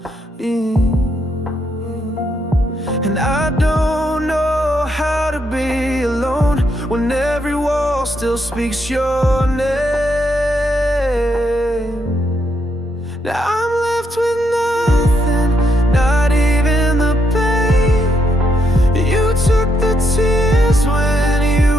me. And I don't know how to be alone when every wall still speaks your name. Now I'm left with nothing, not even the pain. You took the tears when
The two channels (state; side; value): normal; both; correlation 0.78